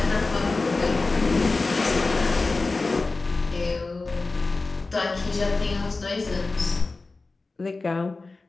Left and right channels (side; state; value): right; quieter; 3.6 dB